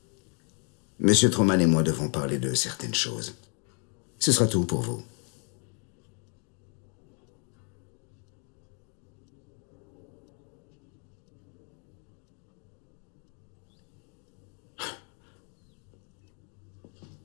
Monsieur Truman et moi devons parler de certaines choses. Ce sera tout pour vous.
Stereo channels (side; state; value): right; quieter; 39.9 dB